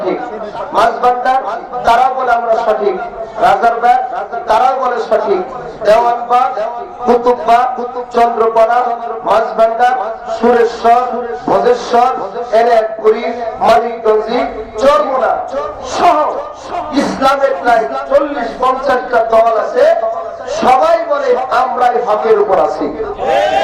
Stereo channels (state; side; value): identical; both; correlation 1.00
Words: মাঝবান্ডার তারাও বলে আমরা সঠিক, রাজারবাগ তারাও বলে সঠিক, দেওয়ানবাগ, কুতুববাগ, চন্দ্রপাড়া, মাঝবান্ডার, সুরেশ্বর, ভোজেশ্বর, এনায়তপুরী, মানিকগঞ্জি, চরমোনা সহ ইসলামের প্রায় 40-50টা দল আছে, সবাই বলে আমরাই হকের উপর আছি,